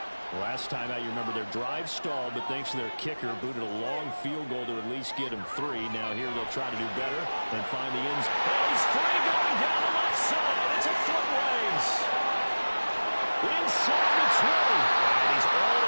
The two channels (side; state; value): both; inverted; correlation -1.00